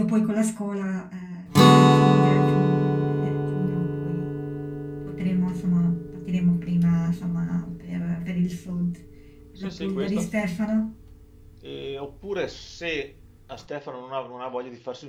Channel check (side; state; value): both; identical; correlation 1.00